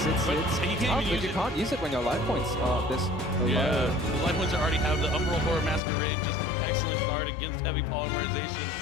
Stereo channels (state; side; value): drops out; right; at 5.8 s